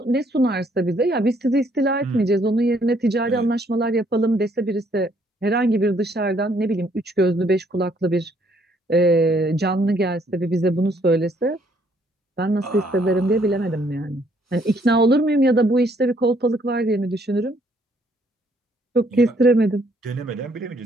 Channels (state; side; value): normal; both; correlation 0.67